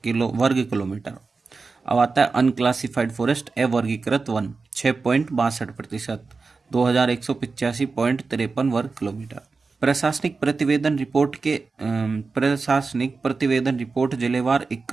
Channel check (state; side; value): quieter; left; 4.3 dB